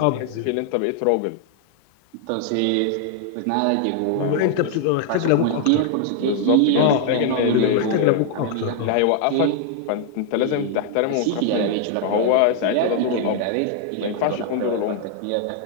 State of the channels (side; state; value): both; different; correlation 0.00